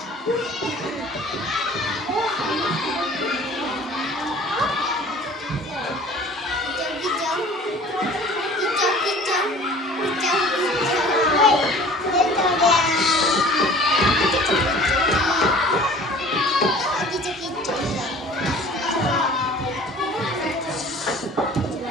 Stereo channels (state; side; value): normal; both; correlation 0.46